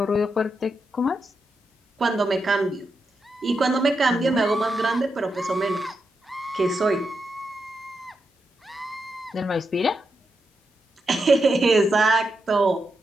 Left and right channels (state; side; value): normal; both; correlation 0.85